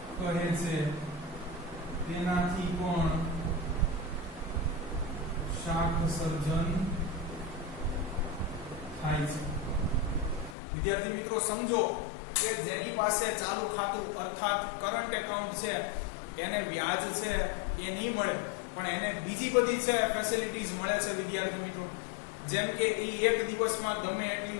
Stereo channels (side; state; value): right; drops out; at 10.6 s